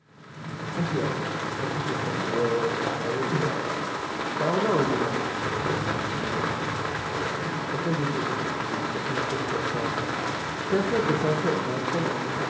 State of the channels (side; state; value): both; identical; correlation 1.00